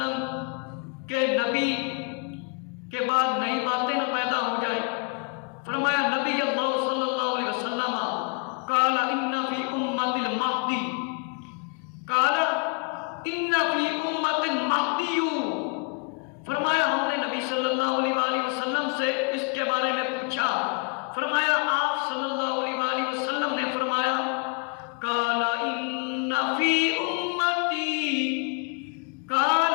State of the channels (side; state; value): right; quieter; 35.5 dB